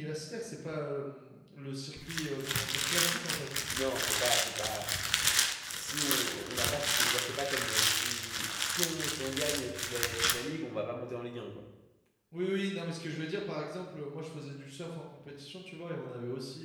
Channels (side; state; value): both; identical; correlation 1.00